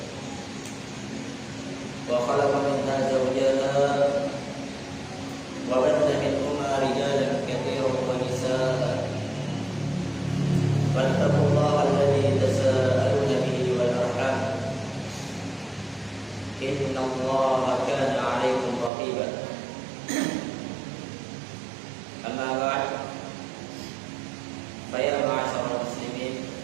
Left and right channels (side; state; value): left; drops out; at 18.9 s